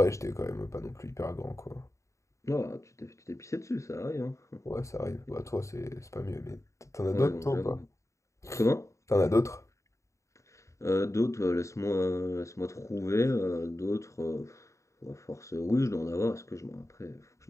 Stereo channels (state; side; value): late; right; 0.15 ms